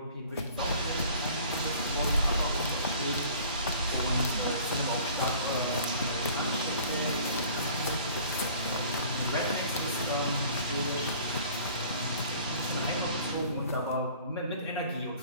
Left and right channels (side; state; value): both; inverted; correlation -0.49